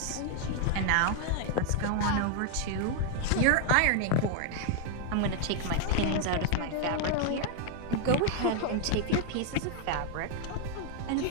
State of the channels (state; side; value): different; both; correlation 0.00